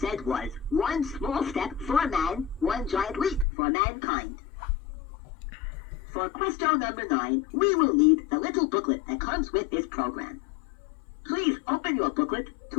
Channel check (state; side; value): drops out; right; at 3.5 s